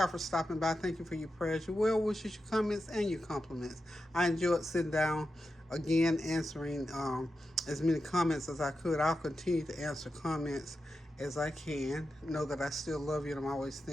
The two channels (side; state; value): both; normal; correlation 0.90